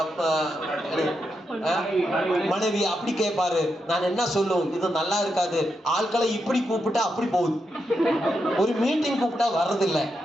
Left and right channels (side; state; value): both; normal; correlation 0.84